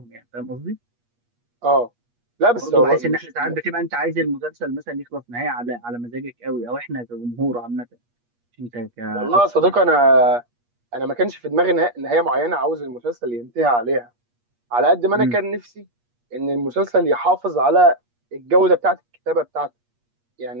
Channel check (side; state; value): left; late; 8.4 ms